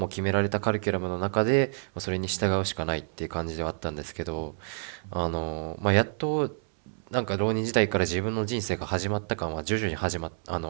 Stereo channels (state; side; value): silent; left; 59 dB below the other